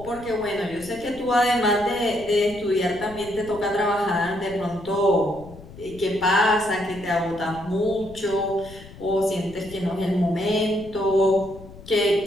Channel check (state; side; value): noise; left; rumble, 18 dB below the sound